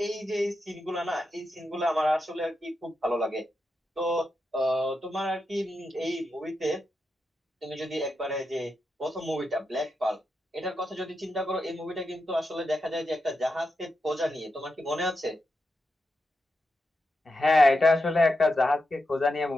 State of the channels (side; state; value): both; normal; correlation 0.87